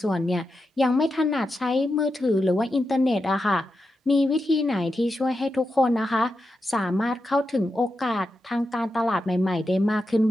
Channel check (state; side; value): normal; both; correlation 0.88